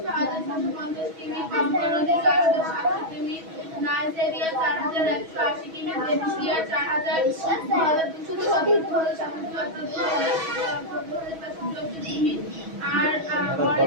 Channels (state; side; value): late; left; 6.2 ms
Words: 6750 কিমি কঙ্গো নদী 4700 কিমি নাইজেরিয়া 4180 কিমি দেশিয়া 4200 কিমি আর